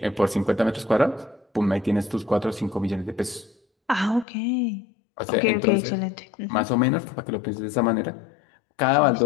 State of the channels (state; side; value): drops out; right; at 4.2 s